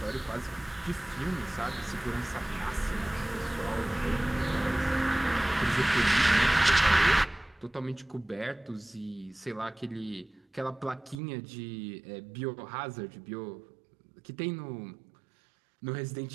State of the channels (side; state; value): left; drops out; at 11.2 s